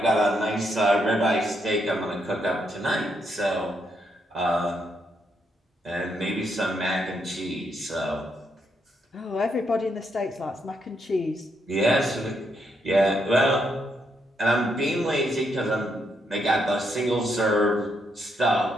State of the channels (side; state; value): both; normal; correlation 0.78